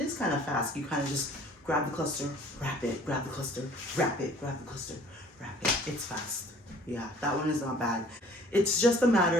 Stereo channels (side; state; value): both; normal; correlation 0.53